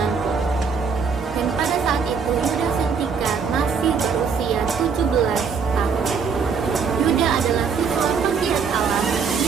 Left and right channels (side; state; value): left; quieter; 5.8 dB